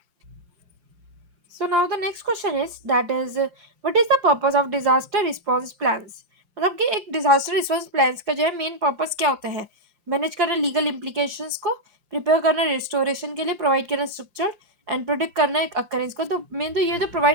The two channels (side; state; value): left; late; 5.7 ms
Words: So now the next question is that is what is the purpose of disaster response plans? मतलब कि एक disaster response plans का जो है main purpose क्या होता है? Manage करना लीगल इम्प्लीकेशंस को, प्रिपेयर करना रिस्टोरेशन के लिए, प्रोवाइड करना स्ट्रक्चर एंड प्रोडिक्ट करना एक अकरेंस को। तो मेन तो ये तो